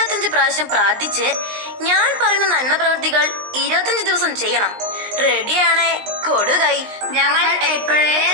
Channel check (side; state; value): left; late; 20 ms